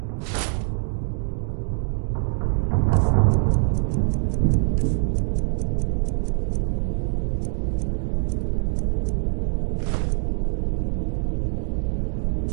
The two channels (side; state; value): left; silent; 60 dB below the other